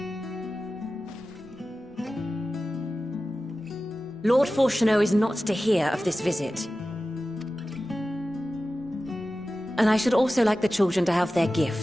Lord Fortuneau is not to hear of this visit. And I should also like the children to have their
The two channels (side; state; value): both; normal; correlation 0.95